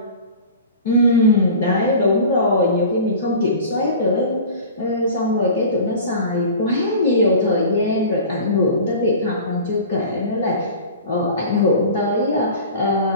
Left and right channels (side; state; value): both; inverted; correlation -0.38